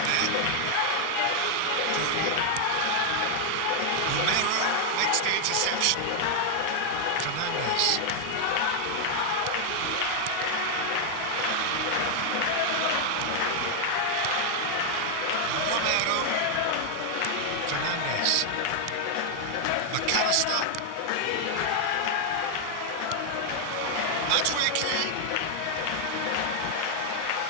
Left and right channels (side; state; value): both; different; correlation 0.00